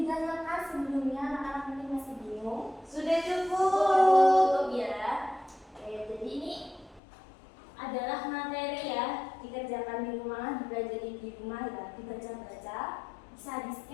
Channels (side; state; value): right; drops out; at 7.0 s